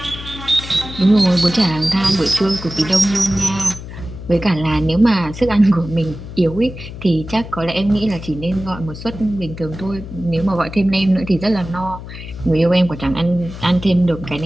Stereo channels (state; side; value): noise; left; hum, 12 dB below the sound